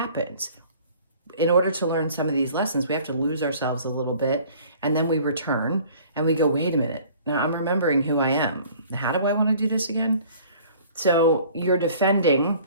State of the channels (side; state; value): both; inverted; correlation -0.51